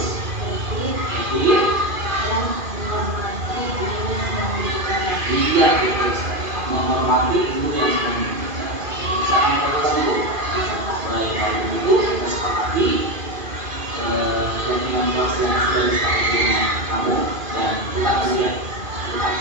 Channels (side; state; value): left; late; 2.5 ms